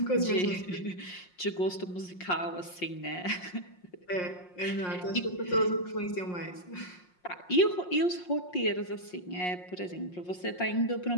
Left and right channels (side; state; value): right; late; 5.6 ms